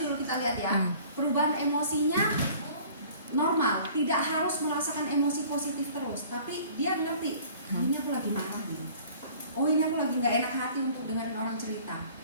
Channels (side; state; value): both; inverted; correlation -0.50